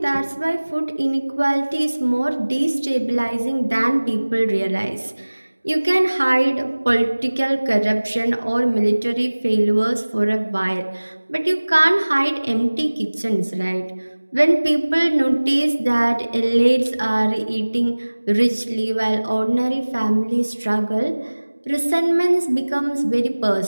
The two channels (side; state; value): both; inverted; correlation -1.00